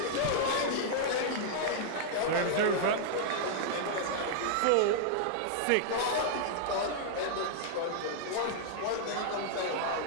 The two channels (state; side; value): different; both; correlation -0.01